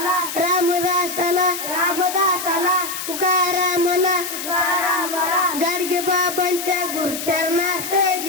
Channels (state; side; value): noise; left; hiss, 6 dB below the sound